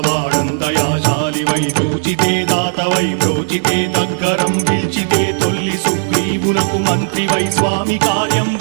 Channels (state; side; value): silent; left; digital silence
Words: వాడందయాశాలివై చూచితే దాతవై బ్రోచితే దగ్గరం పిల్చితే తొల్లి సుగ్రీవునకు మంత్రివై స్వామి